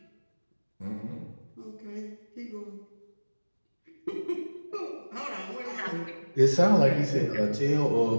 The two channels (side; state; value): both; inverted; correlation -1.00